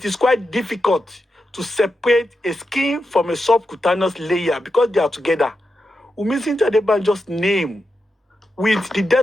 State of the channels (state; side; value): normal; both; correlation 0.88